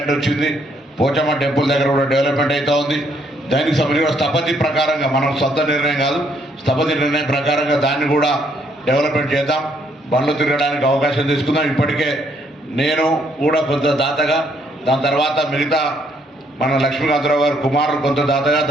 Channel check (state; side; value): normal; both; correlation 0.70